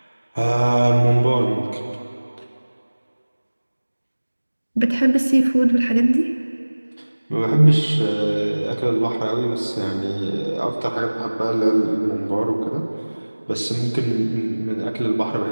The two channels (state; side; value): inverted; both; correlation -1.00